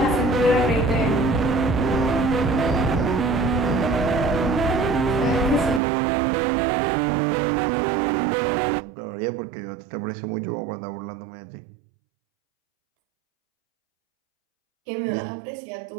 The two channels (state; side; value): drops out; left; at 5.8 s